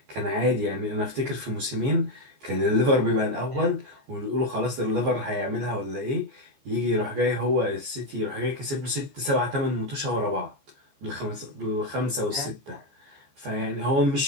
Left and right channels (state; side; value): late; left; 14 ms